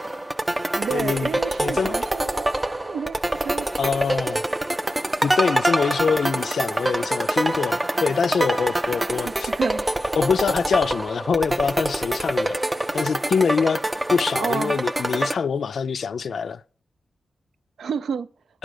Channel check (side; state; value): both; normal; correlation 0.90